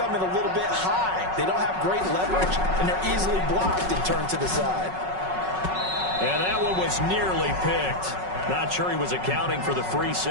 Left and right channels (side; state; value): left; late; 5.4 ms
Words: in a little bit high. They don't have great leverage, and they're easily blocked and turned to the side. And that one was nearly picked. Not sure he was accounting for the free